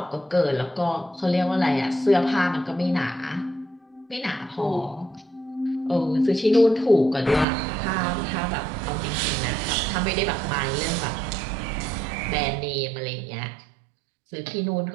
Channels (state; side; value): drops out; left; at 7.5 s